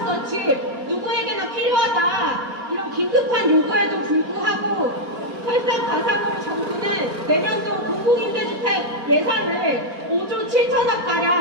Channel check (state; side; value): normal; both; correlation -0.03